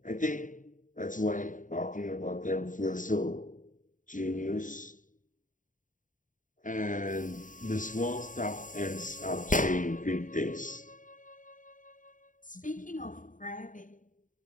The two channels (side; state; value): right; late; 0.38 ms